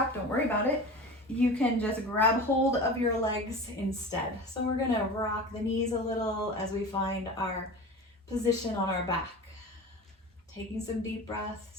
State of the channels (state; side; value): normal; both; correlation 0.33